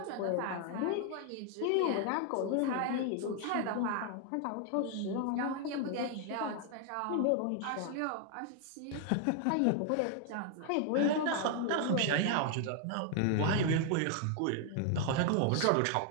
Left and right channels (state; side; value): different; both; correlation 0.00